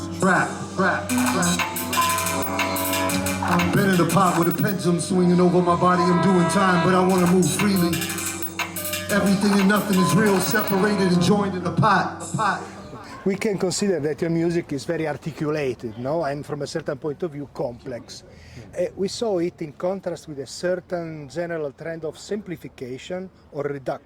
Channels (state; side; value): identical; both; correlation 1.00